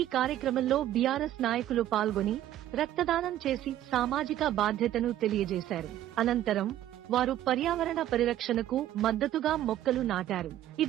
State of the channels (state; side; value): quieter; left; 12.7 dB